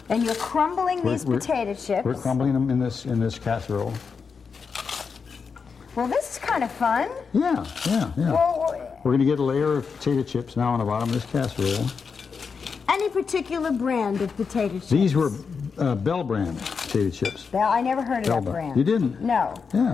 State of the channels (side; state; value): right; quieter; 5.6 dB